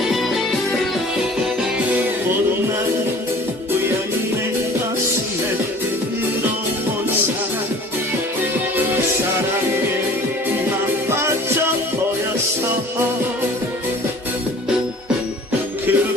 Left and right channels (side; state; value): both; normal; correlation 0.47